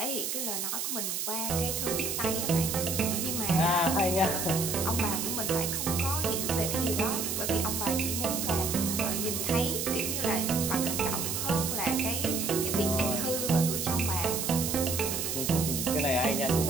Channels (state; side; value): noise; right; hiss, 2 dB below the sound